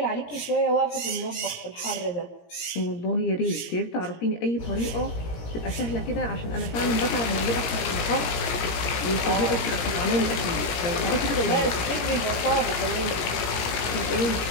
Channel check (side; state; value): right; late; 17 ms